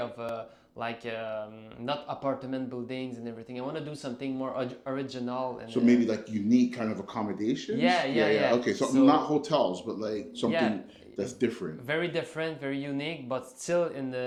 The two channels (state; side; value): identical; both; correlation 1.00